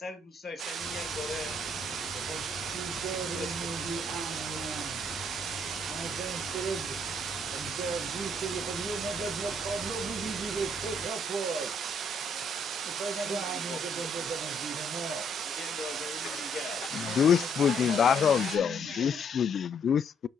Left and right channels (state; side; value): normal; both; correlation 0.68